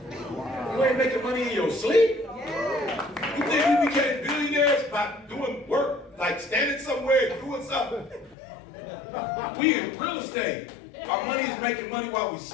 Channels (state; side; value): drops out; right; at 8.3 s